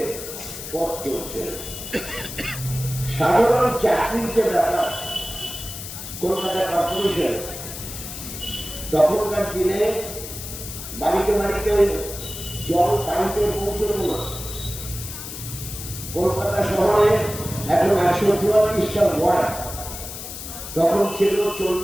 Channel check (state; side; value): noise; left; hiss, 10 dB below the sound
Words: পথ চলছে। সাধারণ চাকরির যে ব্যাপার, কলকাতা কর্পোরেশন তখনকার দিনে বাড়িতে বাড়িতে জল পাইপে পৌঁছল না। কলকাতা শহরে এখন ১৪৪টা ওয়ার্ড, তখন ছিল